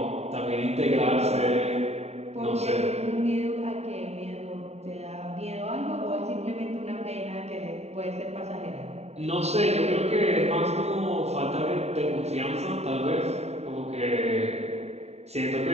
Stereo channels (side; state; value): left; late; 0.31 ms